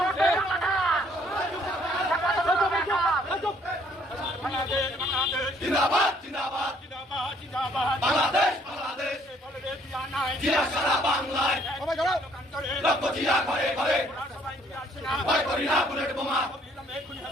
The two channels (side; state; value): both; normal; correlation 0.63